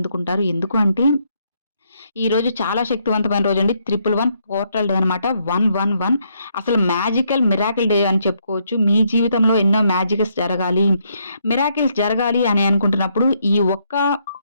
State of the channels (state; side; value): inverted; both; correlation -0.74